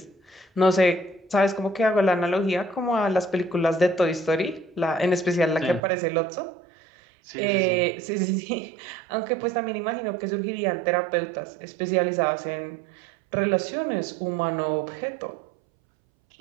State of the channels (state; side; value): drops out; left; at 5.8 s